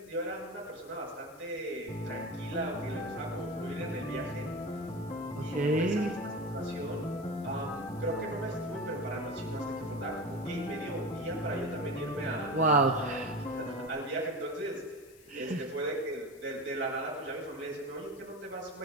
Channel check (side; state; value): left; noise; hiss, 24 dB below the sound